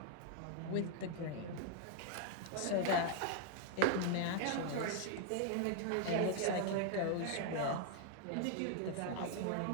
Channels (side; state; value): both; different; correlation 0.00